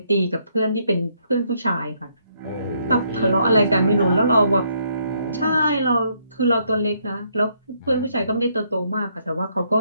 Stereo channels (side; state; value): both; inverted; correlation -0.72